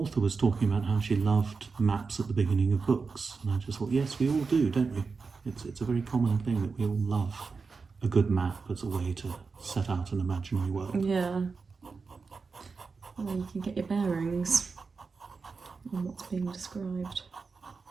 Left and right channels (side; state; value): left; quieter; 4.7 dB